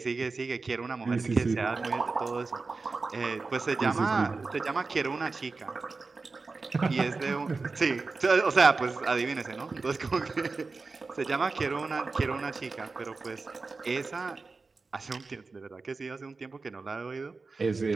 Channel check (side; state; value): left; quieter; 4.0 dB